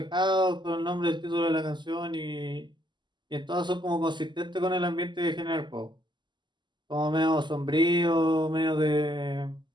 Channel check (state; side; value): late; left; 0.22 ms